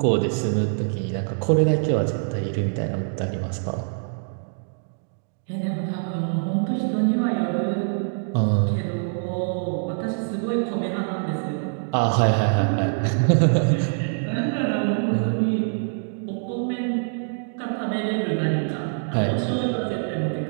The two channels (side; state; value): left; silent; digital silence